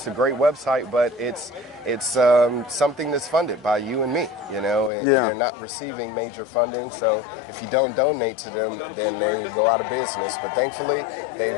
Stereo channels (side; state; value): right; drops out; at 4.9 s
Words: a great website, but it's something that's funded by you and me, They're not receiving major funding. So if you don't donate to them, then they go out of business. But thankfully,